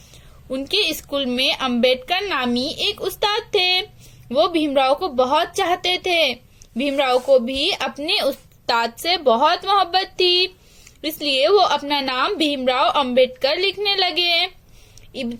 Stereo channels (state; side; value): identical; both; correlation 1.00